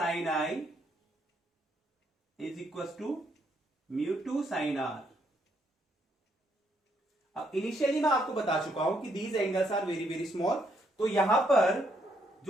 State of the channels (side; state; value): both; normal; correlation 0.73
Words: I is equal to mu 2 sine R अब इनिशियली मैं आपको बता चुका हूं कि these angles are very very small, तो यहां पर